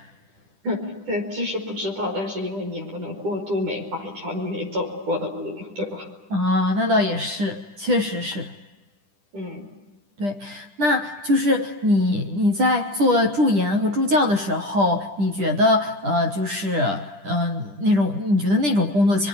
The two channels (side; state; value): left; late; 10 ms